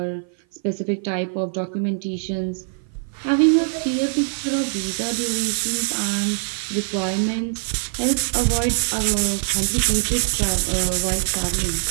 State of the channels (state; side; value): silent; left; 55 dB below the other